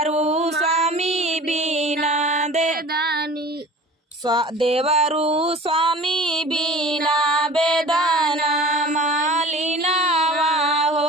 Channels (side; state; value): both; normal; correlation 0.42